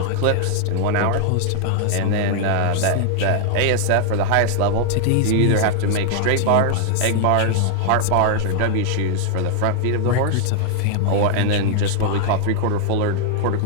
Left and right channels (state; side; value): different; both; correlation -0.01